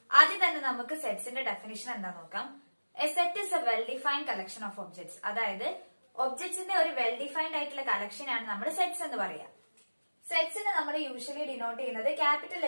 ആദ്യം തന്നെ നമുക്ക് സെറ്റ്സിന്റെ ഡെഫിനിഷൻ എന്താ നോക്കാം. A set is A well defined collection of objects. അതായത് ഒബ്ജക്ട്സിന്റെ ഒരു വെൽ ഡിഫൈൻഡ് ആയിട്ടുള്ള കളക്ഷൻ ആണ് നമ്മൾ സെറ്റ്സ് എന്ന് പറയാം. സെറ്റ്സിനെ നമ്മൾ യൂഷ്വലി ഡിനോട്ട് ചെയ്യുന്നത് ക്യാപിറ്റൽ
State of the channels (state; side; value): inverted; both; correlation -1.00